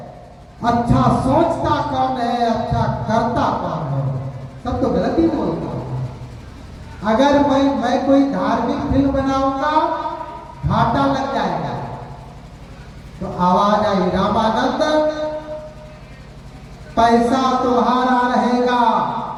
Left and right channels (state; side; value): identical; both; correlation 1.00